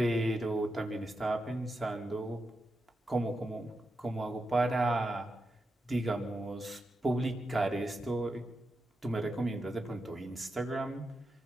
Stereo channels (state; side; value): normal; both; correlation 0.87